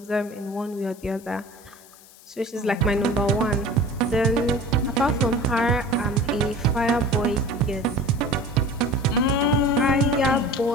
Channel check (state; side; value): noise; left; hiss, 23 dB below the sound